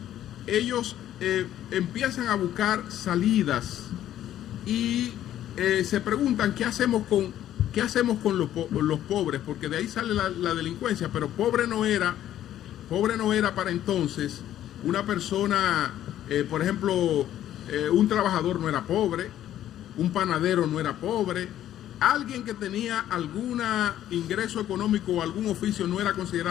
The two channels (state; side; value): quieter; right; 11.9 dB